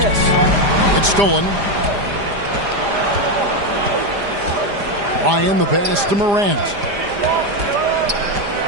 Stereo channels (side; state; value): left; late; 4.9 ms